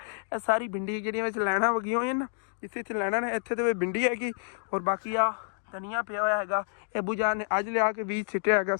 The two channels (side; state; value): right; silent; digital silence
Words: ਇਹ ਸਾਰੀ ਭਿੰਡੀ ਜਿਹੜੀਆਂ ਵਿੱਚ ਲੈਣਾ ਵਗੀਆਂ ਹੋਈਆਂ ਨਾ, ਜਿੱਥੇ ਇੱਥੇ ਲੈਣਾ ਨੇ ਇੱਥੇ ਤੇ ਭਿੰਡੀ ਹੈਗੀ। ਔਰ ਬਾਕੀ ਆ ਧਨੀਆ ਪਿਆ ਹੋਇਆ ਹੈਗਾ, ਇਹ ਬੁਝਾ ਨੇ ਅੱਜ ਲਿਆ ਕੇ ਬੀਜ ਸਿੱਟਿਆ ਹੈਗਾ,